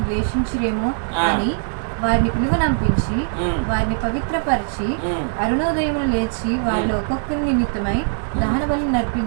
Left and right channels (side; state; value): left; silent; digital silence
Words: ద్వేషించిరేమో అని వారిని పిలువనంపించి వారిని పవిత్రపరిచి అరుణోదయమును లేచి వారిలో ఒక్కొక్కరి నిమిత్తమై దహన బలి